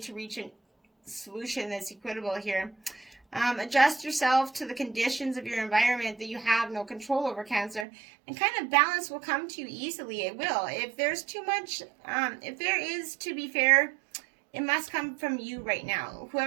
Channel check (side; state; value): left; drops out; at 7.9 s